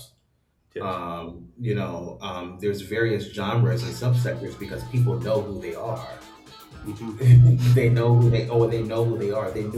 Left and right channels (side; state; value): both; identical; correlation 1.00